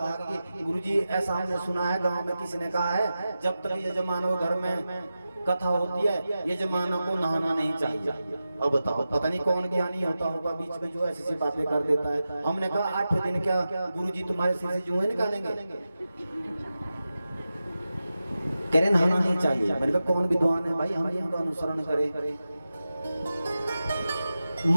कि गुरुजी ऐसा हमने सुना है, गांव में किसी ने कहा है जब तक यजमानों घर में कथा होती है यजमानों को नहाना नहीं चाहिए। अब बताओ पता नहीं कौन ज्ञानी होता होगा बीच में जो ऐसी बातें कर देता है। हमने कहा 8 दिन क्या गुरुजी तुम्हारे सिर से जुएं निकालेंगे, कह रहे नहाना नहीं चाहिए। मैंने कहा कौन विद्वान है भाई हम इनका अनुसरण करें।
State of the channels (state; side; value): inverted; both; correlation -0.93